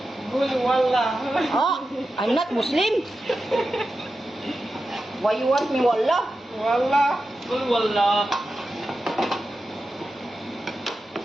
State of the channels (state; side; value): normal; both; correlation 0.91